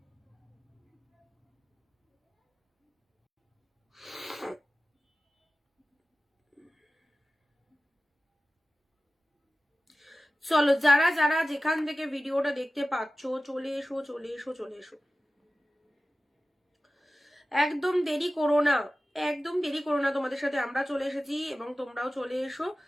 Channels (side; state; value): both; normal; correlation 0.96